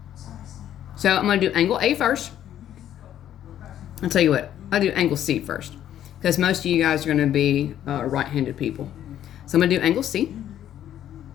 So I'm going to do angle A first. I'll tell you what, I'll do angle C first, because most of you guys are going to be right-handed people. So I'm going to do angle C.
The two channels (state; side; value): quieter; right; 11.1 dB